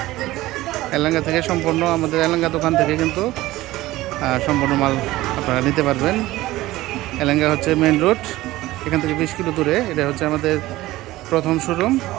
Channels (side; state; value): left; quieter; 17.3 dB